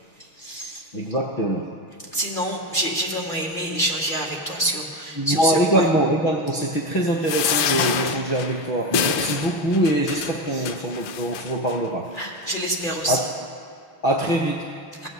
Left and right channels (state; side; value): late; right; 6.3 ms